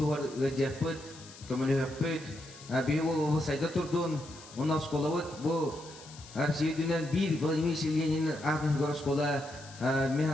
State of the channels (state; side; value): noise; left; hiss, 18 dB below the sound